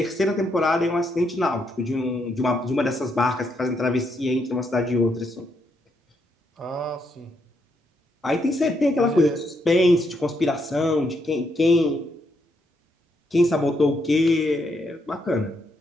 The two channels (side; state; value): both; normal; correlation 0.77